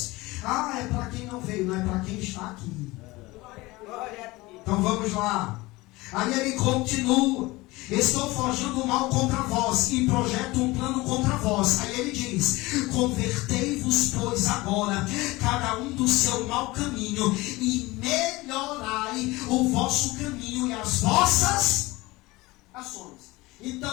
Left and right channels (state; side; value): quieter; right; 21.1 dB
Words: Ah, é para quem não veio, não é para quem está aqui. Glória a Deus. Então vamos lá. Aí ele continua. Estou forjando o mal contra vós e projeto um plano contra vós. Aí ele diz, convertei-vos, pois, agora, cada um do seu mau caminho, e melhorai o vosso caminho e as vossas ações.